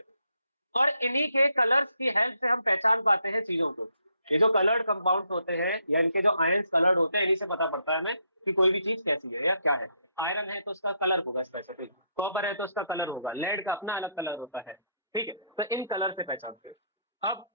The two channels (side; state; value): both; inverted; correlation -0.74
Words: और इन्हीं के कलर्स की हेल्प से हम पहचान पाते हैं चीजों को। ये जो कलर्ड कंपाउंड्स होते हैं या इनके जो आयंस कलर्ड होते हैं, इन्हीं से पता पड़ता है हमें कि कोई भी चीज कैसी है या क्या है। आयरन है तो उसका कलर होगा स्पेसिफिक, कॉपर है तो उसका कलर होगा, लेड का अपना अलग कलर होता है। ठीक है, तो इन कलर से पहचानते हैं। अब